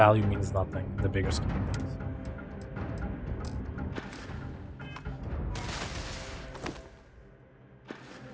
means nothing in the bigger scheme of things.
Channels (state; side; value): identical; both; correlation 1.00